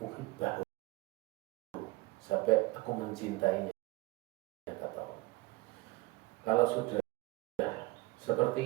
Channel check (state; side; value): quieter; left; 21.7 dB